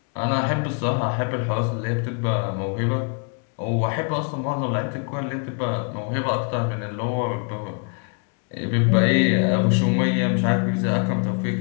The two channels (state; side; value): quieter; right; 36.9 dB